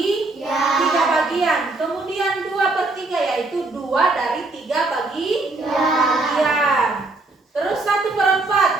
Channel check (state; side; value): quieter; left; 3.2 dB